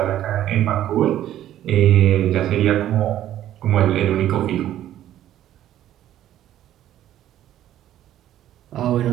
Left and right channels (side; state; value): left; quieter; 12.3 dB